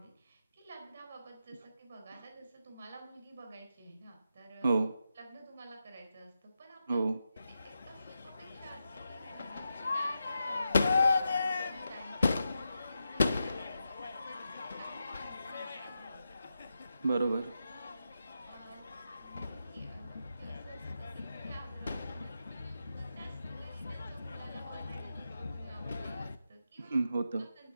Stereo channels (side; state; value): both; inverted; correlation -0.88